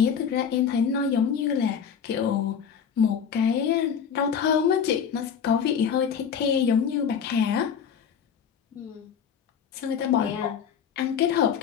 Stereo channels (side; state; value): right; quieter; 7.3 dB